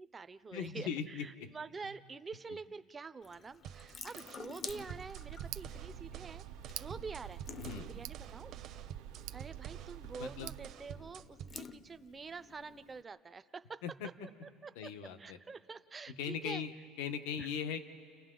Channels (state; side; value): normal; both; correlation 0.39